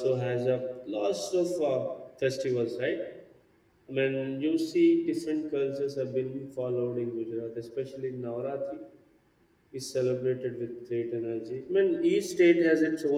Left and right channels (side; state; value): both; identical; correlation 1.00